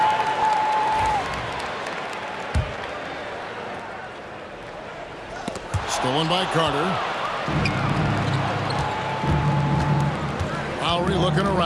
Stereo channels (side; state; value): both; identical; correlation 1.00